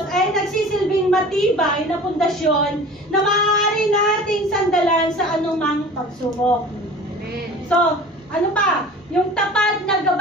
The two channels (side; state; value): both; normal; correlation 0.41